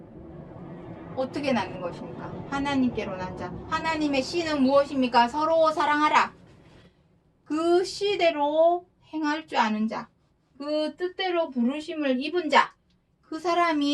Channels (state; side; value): identical; both; correlation 1.00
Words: 어떻게 낳는 것입니까? 하나님께로 난 자. 하나님의 씨는 무엇입니까? 서로 사랑하라. 그 씨대로 행할 줄 아는 자. 그 뜻대로 부르심을 입은 자. 그